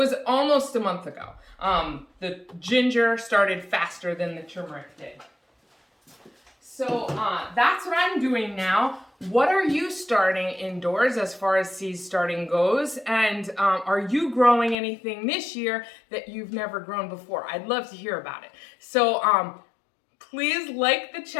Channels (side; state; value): right; drops out; at 14.8 s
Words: almost a month ago. The ginger started faster than the turmeric did. So that's what I'm doing now. What are you starting indoors as far as seed starting goes? And are you growing anything this year that you've never grown before? I'd love to hear about it. So please like the